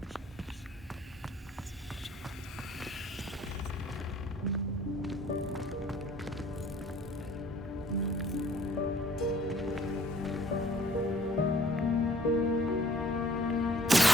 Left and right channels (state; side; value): normal; both; correlation 0.57